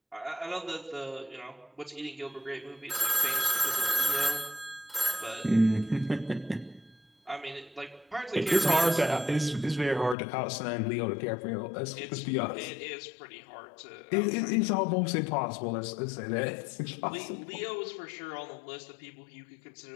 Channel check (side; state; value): right; drops out; at 10.2 s